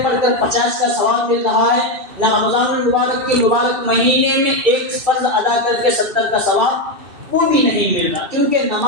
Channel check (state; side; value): late; left; 2.6 ms